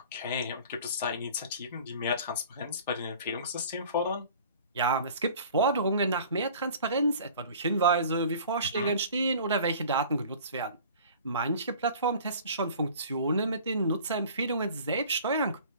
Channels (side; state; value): both; inverted; correlation -0.46